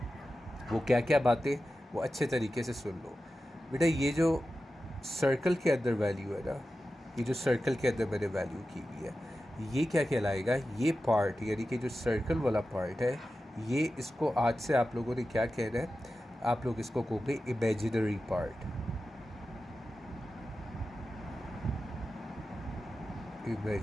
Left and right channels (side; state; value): both; normal; correlation 0.93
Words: वो क्या क्या बातें, वो अच्छे तरीके से सुन लो। बेटा, ये जो सर्कल के अंदर वैल्यू है ना, ये जो सर्कल के अंदर मैंने वैल्यू की हुई है, ये क्या कहलाएगा, ये पार्ट यानी कि जो सर्कल वाला पार्ट है, ये इसको आज से आप लोगों ने क्या कहना है, आप लोग इसको कहोगे इमेजिनरी पार्ट।